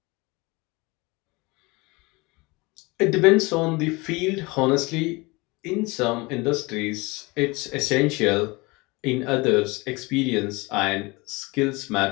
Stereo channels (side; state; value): right; quieter; 24.6 dB